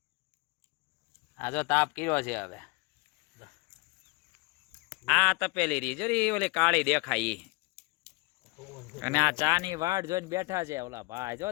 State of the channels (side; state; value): right; quieter; 25.8 dB